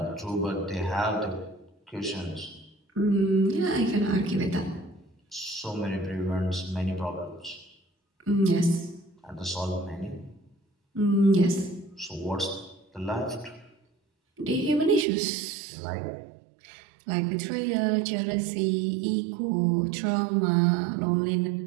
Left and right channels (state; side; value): drops out; left; at 15.1 s